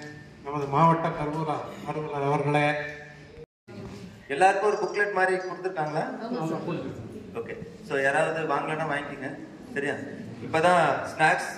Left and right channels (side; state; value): both; identical; correlation 1.00